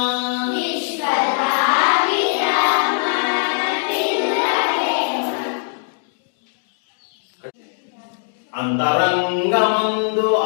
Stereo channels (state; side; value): silent; right; 65 dB below the other